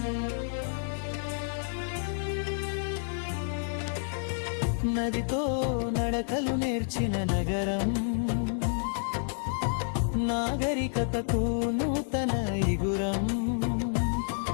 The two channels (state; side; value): silent; right; digital silence